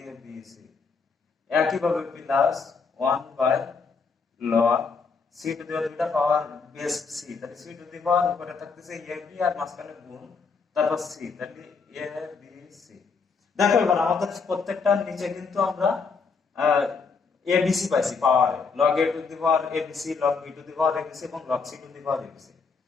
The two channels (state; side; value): quieter; right; 5.0 dB